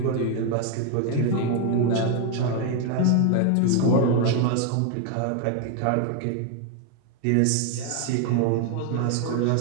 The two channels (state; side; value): different; both; correlation 0.01